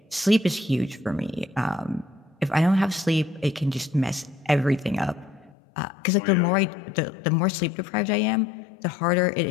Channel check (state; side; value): drops out; right; at 5.6 s